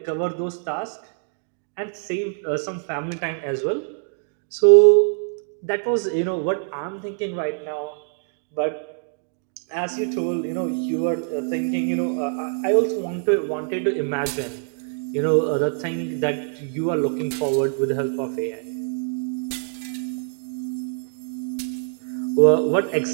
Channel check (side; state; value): left; silent; digital silence